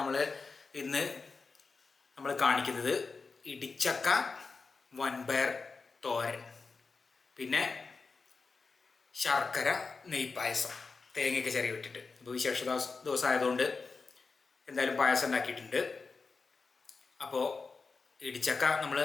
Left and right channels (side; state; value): right; quieter; 4.5 dB